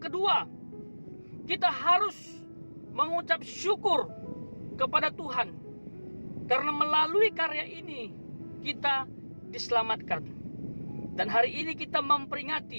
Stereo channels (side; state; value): both; inverted; correlation -1.00